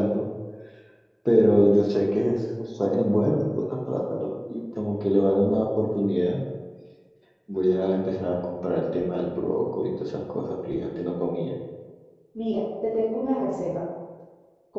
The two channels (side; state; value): both; identical; correlation 1.00